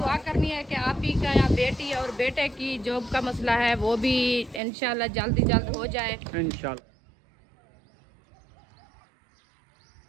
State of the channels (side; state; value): left; drops out; at 4.6 s